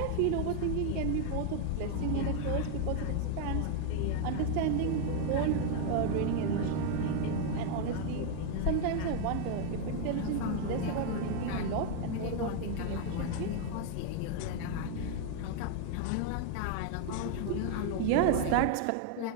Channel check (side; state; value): both; different; correlation 0.01